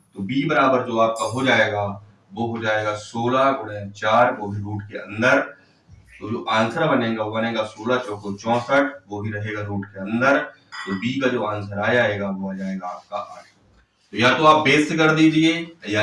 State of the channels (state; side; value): identical; both; correlation 1.00